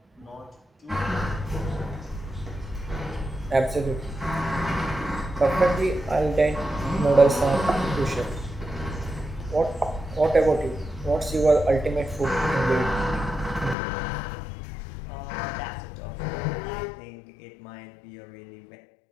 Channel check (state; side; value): drops out; right; at 13.8 s